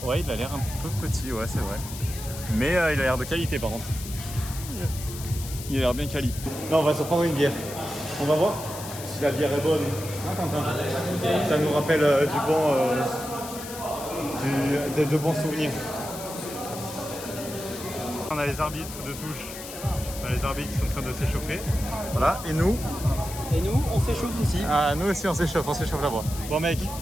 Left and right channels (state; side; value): noise; left; hiss, 11 dB below the sound